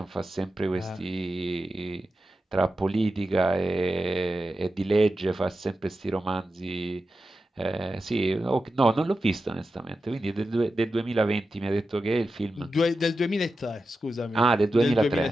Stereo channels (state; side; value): normal; both; correlation 0.91